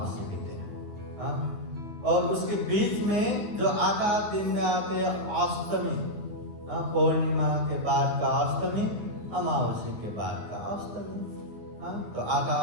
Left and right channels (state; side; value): late; left; 9.6 ms